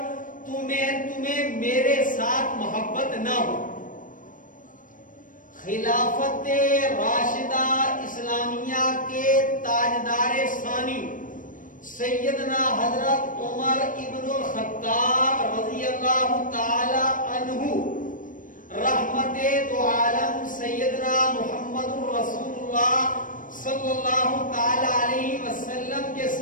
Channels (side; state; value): right; late; 0.38 ms